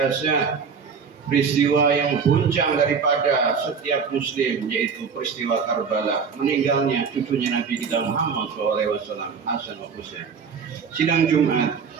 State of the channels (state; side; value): quieter; left; 6.0 dB